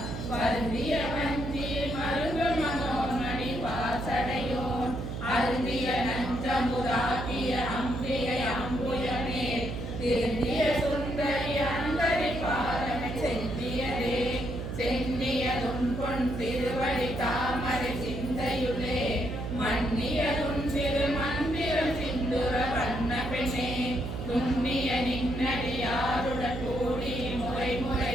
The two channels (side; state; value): right; noise; hum, 5 dB below the sound